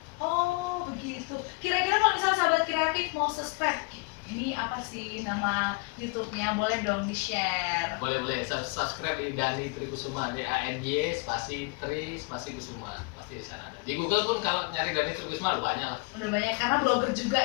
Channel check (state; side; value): quieter; right; 29.1 dB